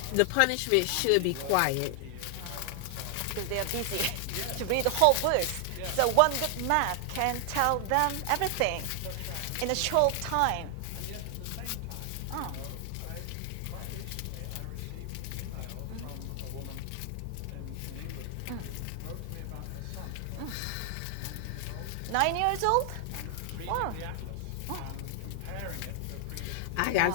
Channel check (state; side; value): different; both; correlation 0.00